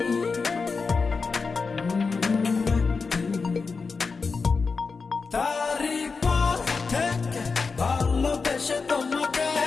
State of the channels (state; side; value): quieter; right; 4.7 dB